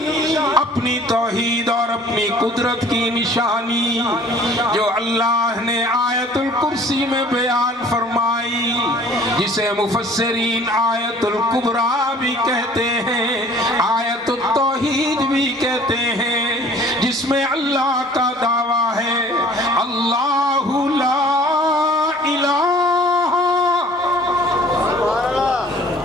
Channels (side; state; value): both; normal; correlation 0.52